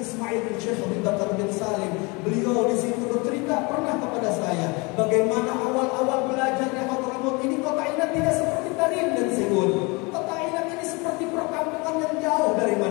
bin Syekh Habib Bakar bin Salim. Beliau di situ bercerita pernah kepada saya bagaimana awal-awal belajar di Hadramut ini. Kota Imad tidak seperti Tarim dan Siwun. Kota Imad ini seperti perkampungan yang jauh dari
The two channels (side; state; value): right; quieter; 27.8 dB